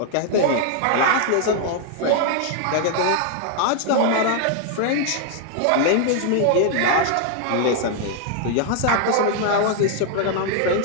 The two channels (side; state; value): both; different; correlation 0.00